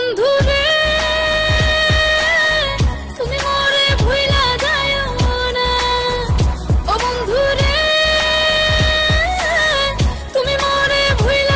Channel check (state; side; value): identical; both; correlation 1.00